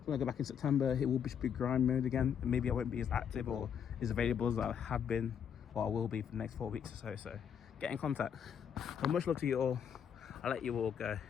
When I go back in September, it will be grind mode again, and maybe I won't be as active or as available as I have been, or I will be for the next 4 weeks or so. So get in contact. Well, much love to you all. I'll let you all go,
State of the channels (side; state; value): right; quieter; 8.1 dB